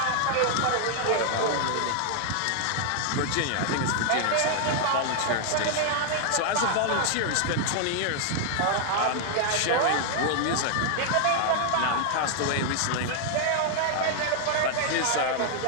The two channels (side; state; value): both; different; correlation 0.00